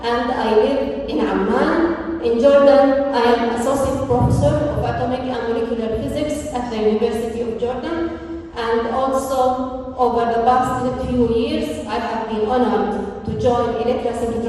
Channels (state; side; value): identical; both; correlation 1.00